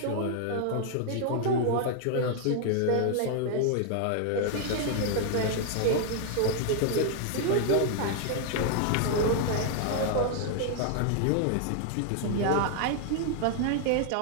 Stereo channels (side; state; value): both; different; correlation 0.00